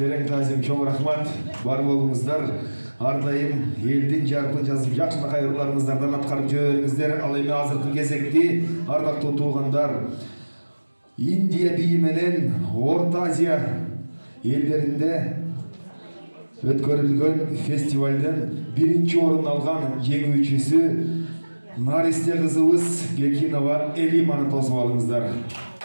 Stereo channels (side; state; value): both; inverted; correlation -1.00